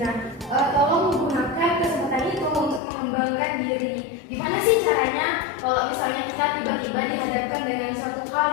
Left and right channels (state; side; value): drops out; right; at 2.8 s